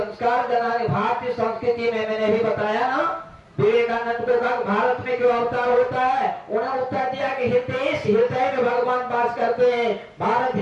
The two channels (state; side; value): identical; both; correlation 1.00